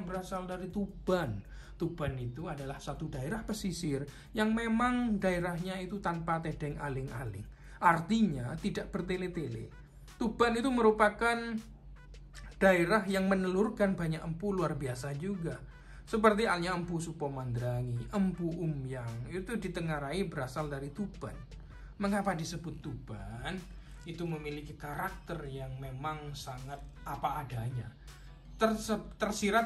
dari Tuban. Tuban itu adalah satu daerah pesisir yang memang daerahnya itu tanpa tedeng aling-aling. Artinya tidak bertele-tele. Tuban itu merupakan daerah yang menelurkan banyak empu luar biasa juga. Seperti halnya Empu Supomandrangi, Empu Umyang, itu ditengarai berasal dari Tuban. Mengapa disebut Tuban? Itu memiliki karakter yang memang sangat apa adanya.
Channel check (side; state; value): both; identical; correlation 1.00